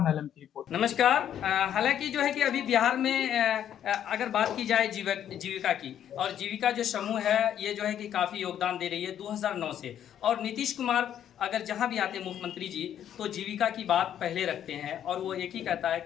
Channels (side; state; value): right; quieter; 10.1 dB